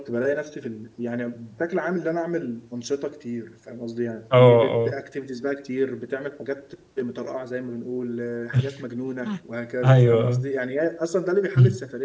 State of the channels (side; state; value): both; identical; correlation 1.00